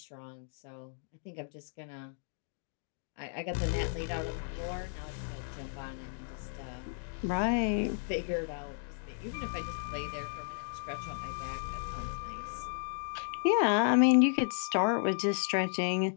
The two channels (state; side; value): silent; right; digital silence